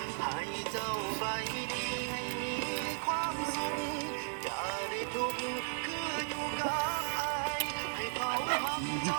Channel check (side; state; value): left; silent; 54 dB below the other